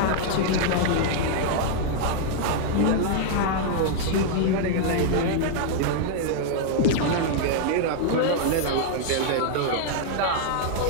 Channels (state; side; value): different; both; correlation 0.00